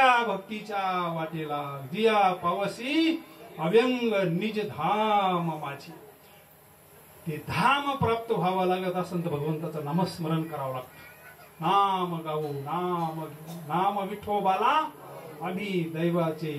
भक्तीच्या वाटेला जिया पावसी अव्यंग निज धाम माझी. ते धाम प्राप्त व्हावं लागत असेल तर भगवंताचं नामस्मरण करावं लागतं. नाम गाऊ नाम नाम विठोबाला आम्ही दैवाचे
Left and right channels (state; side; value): identical; both; correlation 1.00